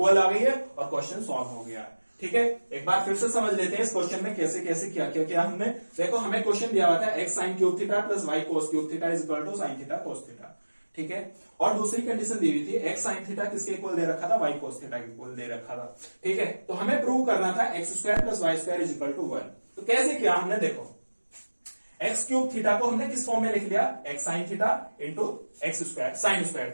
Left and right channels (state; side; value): inverted; both; correlation -1.00